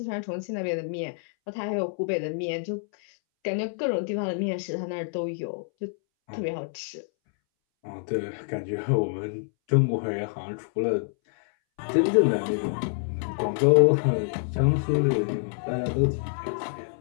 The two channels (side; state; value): right; silent; 60 dB below the other